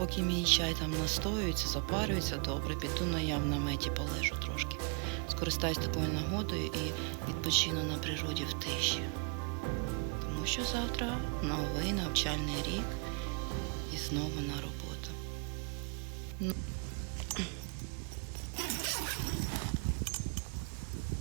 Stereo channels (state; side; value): quieter; left; 36.8 dB